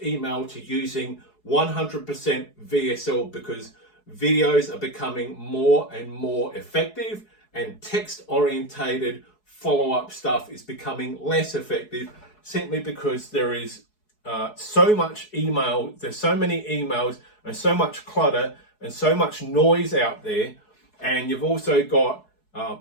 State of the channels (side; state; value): right; late; 4.7 ms